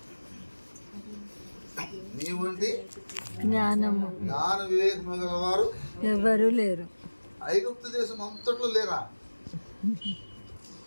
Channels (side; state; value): both; inverted; correlation -1.00